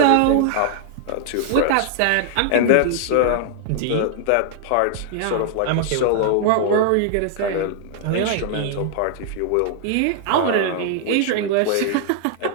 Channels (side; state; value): both; different; correlation 0.00